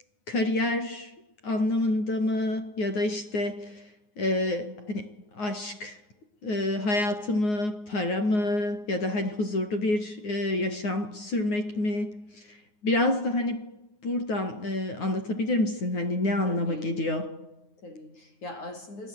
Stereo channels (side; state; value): right; late; 9.6 ms